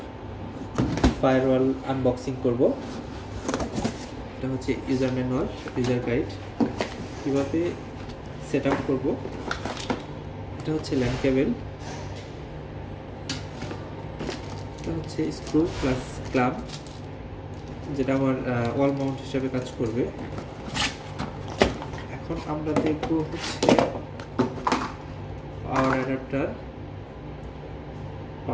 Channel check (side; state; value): both; identical; correlation 1.00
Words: firewall unboxing করব। এটা হচ্ছে ইউজার ম্যানুয়াল, ইউজার গাইড, কীভাবে সেট আপ করবো। এটা হচ্ছে ল্যান কেবল, এটা হচ্ছে স্ক্রু প্লাস ক্লাম্প, যেটা আমার ওয়াল মাউন্ট হিসেবে কাজ করবে। এখন আমরা দেখব হচ্ছে পাওয়ার অ্যাডাপ্টার।